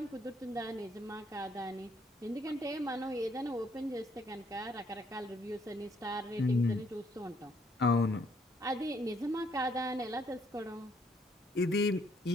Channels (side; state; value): both; normal; correlation 0.68